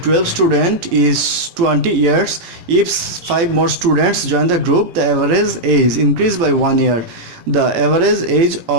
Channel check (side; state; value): left; late; 18 ms